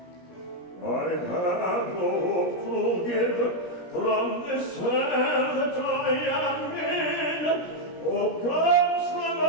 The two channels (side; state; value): right; late; 17 ms